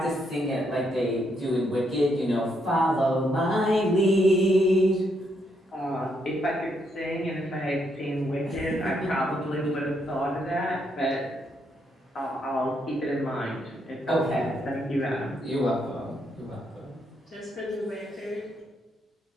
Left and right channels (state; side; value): normal; both; correlation 0.76